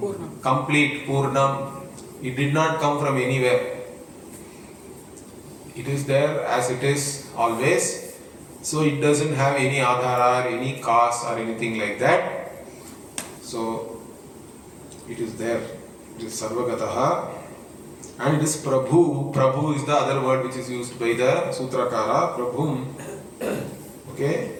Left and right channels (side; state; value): both; identical; correlation 1.00